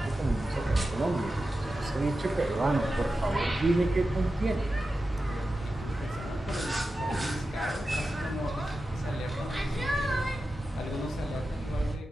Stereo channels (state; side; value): normal; both; correlation 0.92